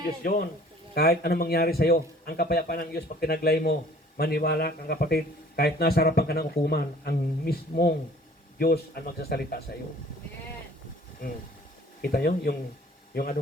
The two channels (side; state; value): both; normal; correlation 0.52